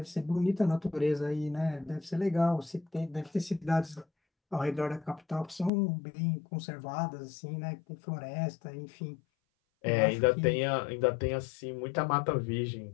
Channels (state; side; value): drops out; right; at 5.7 s